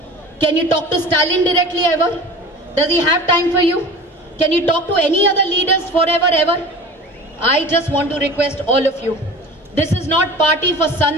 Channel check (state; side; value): normal; both; correlation 0.38